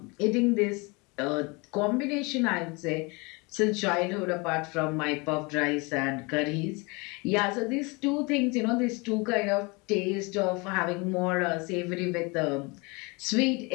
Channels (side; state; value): right; quieter; 27.8 dB